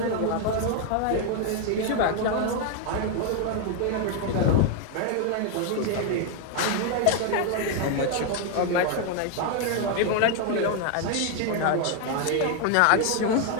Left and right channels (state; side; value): different; both; correlation 0.01